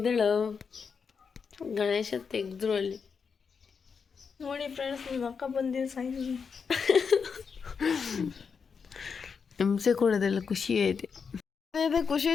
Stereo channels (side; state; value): right; quieter; 5.9 dB